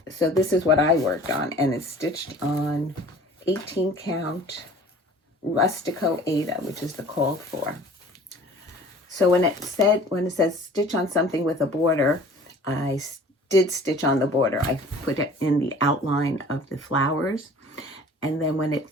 So this is what I worked on, and it's stitched on 18 count Rustico Aida, which is the called for. So when it says stitch on something with a border, I did stitch on the border. I put it in the outline of the flowers. And then when it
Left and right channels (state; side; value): normal; both; correlation 0.47